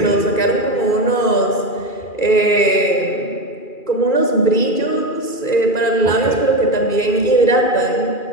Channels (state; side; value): late; right; 2.4 ms